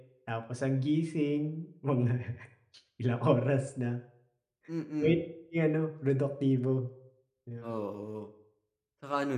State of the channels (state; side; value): identical; both; correlation 1.00